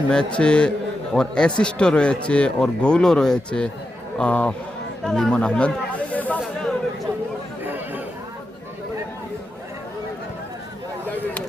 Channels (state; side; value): normal; both; correlation 0.88